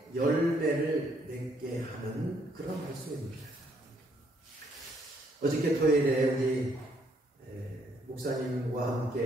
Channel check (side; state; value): both; normal; correlation 0.69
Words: 열매를 맺게 하는 그런 말씀입니다. 어저께 토요일에 우리 목사님과